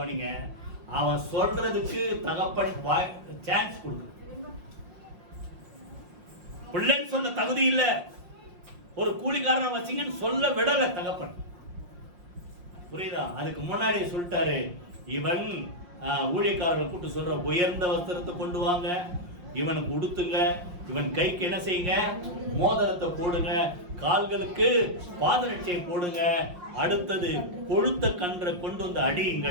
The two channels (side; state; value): left; late; 5.6 ms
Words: அவன் சொல்றதுக்கு தகப்பன் சான்ஸ் கொடுக்கு. பிள்ளைன்னு சொல்ல தகுதி இல்ல, ஒரு கூலிக்காரனா வச்சிங்கன்னு சொல்ல விடல தகப்பன். புரியுதா? அதுக்கு முன்னாடி சொல்லிட்டாரு, இவன் ஊழியக்காரர்கள் கூட்டு சொல்ற உயர்ந்த வஸ்திரத்தை கொண்டு வாங்க, இவனுக்கு உடுத்துங்க, இவன் கைக்கு என்ன செய்யுங்க? மோதிரத்தை போடுங்க, கால்களுக்கு பாதரட்சையை போடுங்க, அடுத்தது கொழுத்த கன்றை கொண்டு வந்து